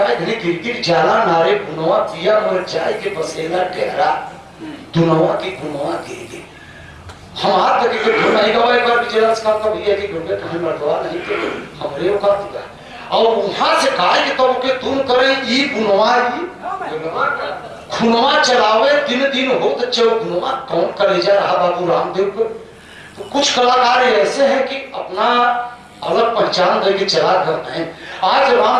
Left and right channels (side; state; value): both; identical; correlation 1.00